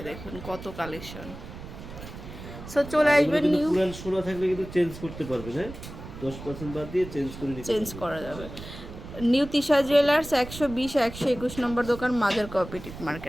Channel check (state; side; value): noise; right; rumble, 13 dB below the sound